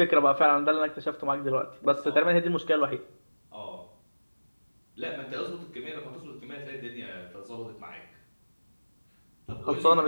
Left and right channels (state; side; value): inverted; both; correlation -1.00